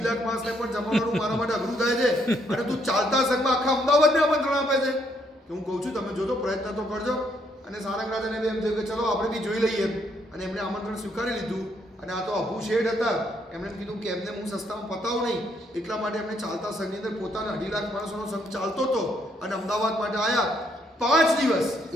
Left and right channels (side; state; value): both; normal; correlation 0.71